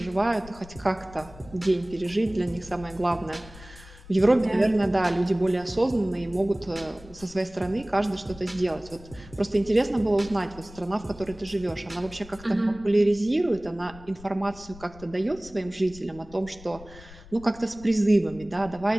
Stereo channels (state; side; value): noise; left; rumble, 19 dB below the sound